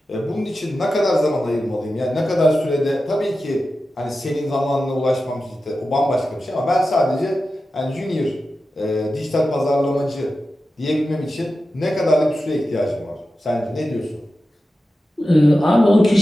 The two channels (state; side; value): normal; both; correlation 0.92